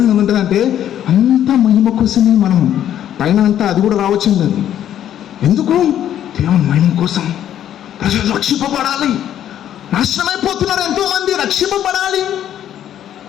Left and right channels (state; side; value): quieter; right; 10.8 dB